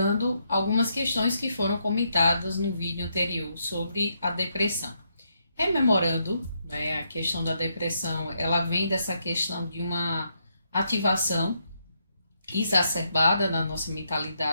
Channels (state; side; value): inverted; both; correlation -0.78